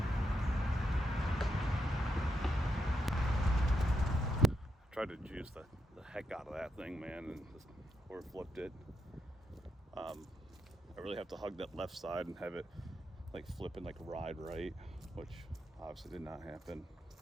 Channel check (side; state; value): both; normal; correlation 0.84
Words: Tried to juice the heck out of that thing, man, and just flipped it. I really have to hug that left side and have it like flip and like ride right, which obviously did not happen.